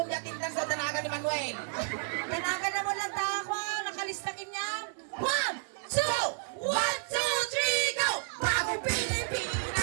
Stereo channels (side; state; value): left; silent; 57 dB below the other